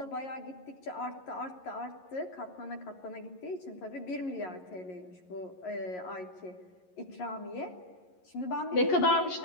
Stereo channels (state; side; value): late; right; 11 ms